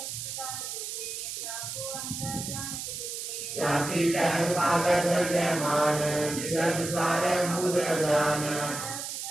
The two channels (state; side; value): noise; right; hiss, 6 dB below the sound